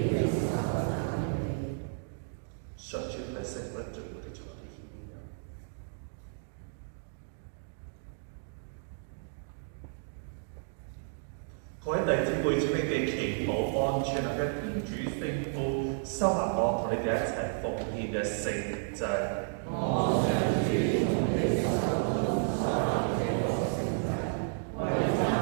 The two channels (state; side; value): silent; left; digital silence